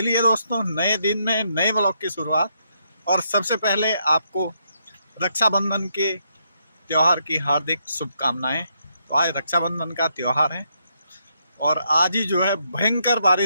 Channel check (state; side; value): inverted; both; correlation -0.77